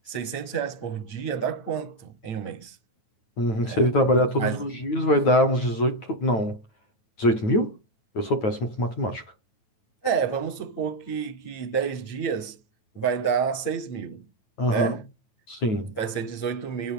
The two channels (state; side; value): late; right; 8.8 ms